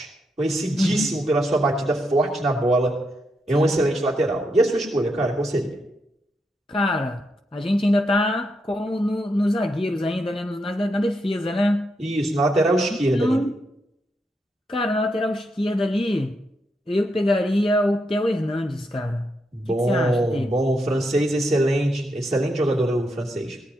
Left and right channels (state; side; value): normal; both; correlation 0.81